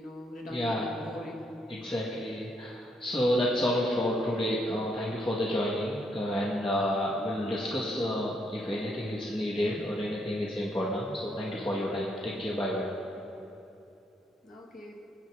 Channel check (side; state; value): both; normal; correlation 0.74